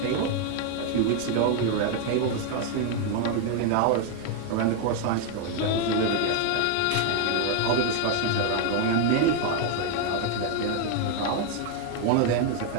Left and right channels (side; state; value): both; different; correlation 0.01